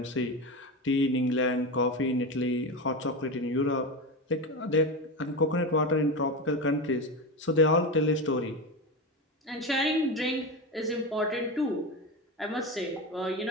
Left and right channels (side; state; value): both; normal; correlation 0.19